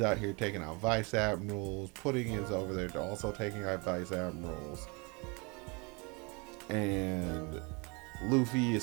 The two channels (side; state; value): left; quieter; 29.8 dB